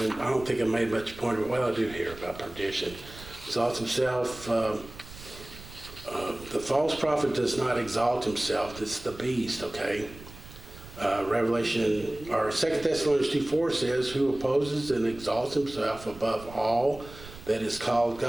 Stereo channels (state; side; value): noise; right; rumble, 17 dB below the sound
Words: I don't think I made much point of it. Well, I do hear about perdition. Exalts himself. The false prophet does not exalt himself. It's the beast, okay? Revelation, or 2 Thessalonians 2:4 says, who opposes and exalts himself above all that is called